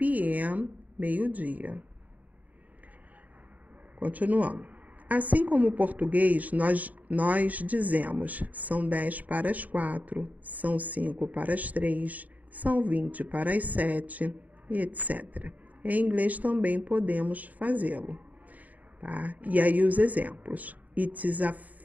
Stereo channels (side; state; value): left; late; 0.077 ms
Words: meio-dia. Continuando. Assim como o português, nós dizemos são 10 para as 4, são 5 para as 3, são 20 para as 7, e etc. Em inglês também podemos fazê-lo, tá? E aí os exemplos. It is